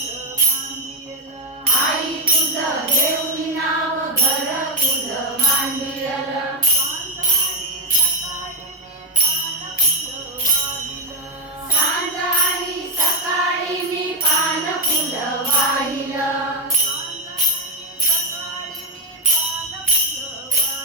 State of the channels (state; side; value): normal; both; correlation 0.04